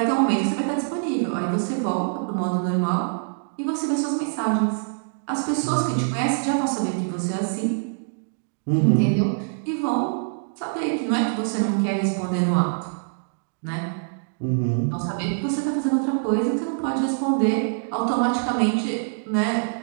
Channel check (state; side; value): silent; left; digital silence